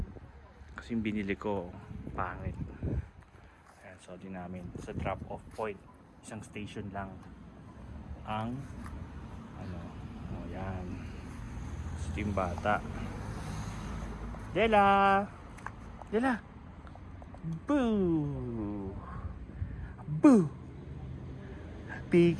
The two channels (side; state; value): both; identical; correlation 1.00